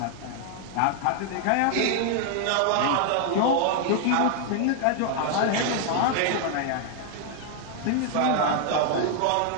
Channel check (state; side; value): different; both; correlation 0.00